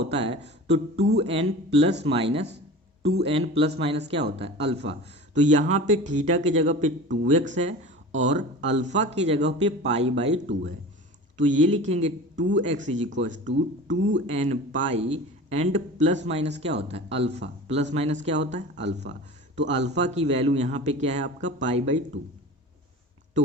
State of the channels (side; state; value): both; normal; correlation 0.36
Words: है, तो 2n प्लस माइनस क्या होता है अल्फा। तो यहाँ पे थीटा की जगह पे 2x है और अल्फा की जगह पे π/2 है। तो ये लिखेंगे 2x is equal to 2n pi and plus minus क्या होता है अल्फा, प्लस माइनस क्या होता है अल्फा। तो अल्फा की वैल्यू यहाँ पे क्या है आपका π/2।